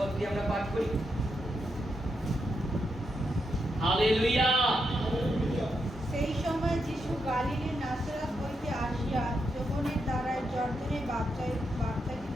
দিয়ে আমরা পাঠ করি। হালেলুয়া। সেই সময় যিশু গালিলের নাসরাত হইতে আসিয়া যোহনের দ্বারা জর্দনে বাপ্তাজিত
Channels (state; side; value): normal; both; correlation 0.83